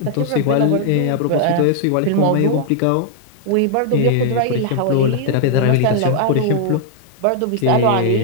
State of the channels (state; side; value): different; both; correlation 0.00